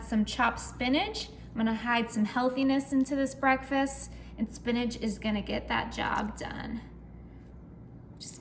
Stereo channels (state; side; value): identical; both; correlation 1.00